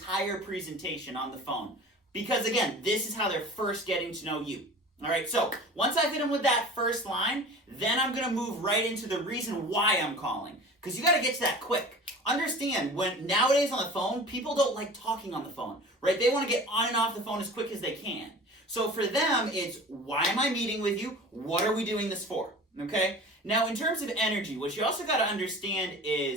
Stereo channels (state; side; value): normal; both; correlation 0.39